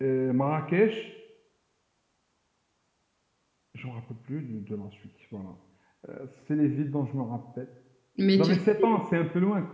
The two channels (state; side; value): identical; both; correlation 1.00